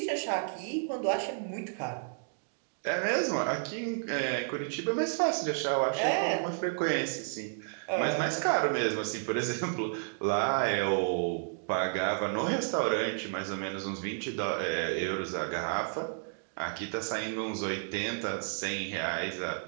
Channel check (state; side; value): silent; left; digital silence